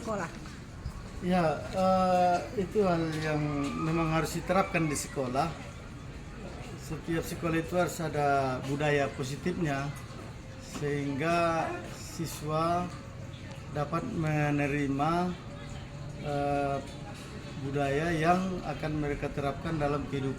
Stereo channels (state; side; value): identical; both; correlation 1.00